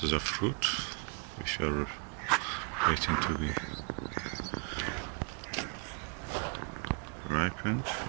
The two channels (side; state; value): left; quieter; 36.1 dB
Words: of fruit which are waiting to be ripened.